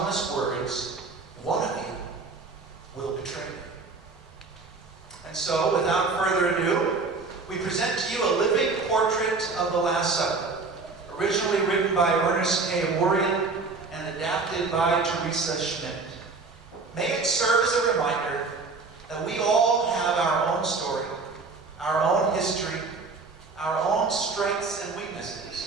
words, "One of you will betray me." And so, without further ado, we present to you a living portrait of the Last Supper, originally written by Ernest K. Aworian and adapted by Teresa Schmidt. May it serve as a reminder that we all have our own story, our own history, our own strengths and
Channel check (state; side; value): quieter; left; 4.1 dB